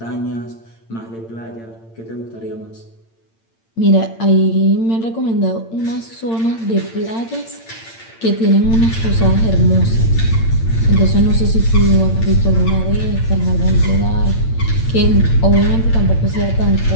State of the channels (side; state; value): right; late; 8.8 ms